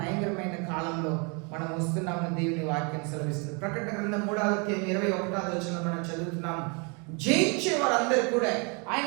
కాలంలో మనం వస్తున్నామని దేవుని వాక్యం సెలవిస్తుంది. ప్రకటన గ్రంథం 3:21 మనం చదువుతున్నాం. జయించే వారందరూ కూడా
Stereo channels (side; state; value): left; quieter; 33.3 dB